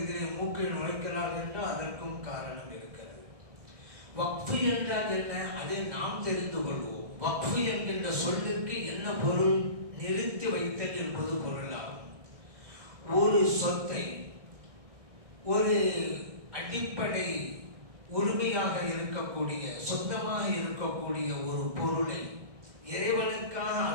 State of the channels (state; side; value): late; left; 1.6 ms